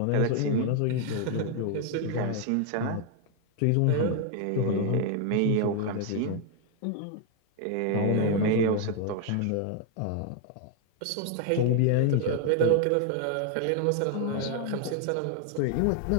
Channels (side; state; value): both; different; correlation 0.00